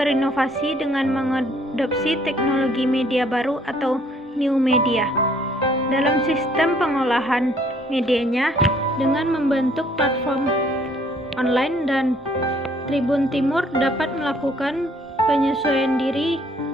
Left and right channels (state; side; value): normal; both; correlation 0.63